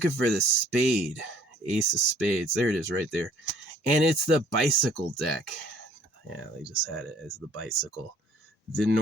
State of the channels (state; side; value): normal; both; correlation 0.58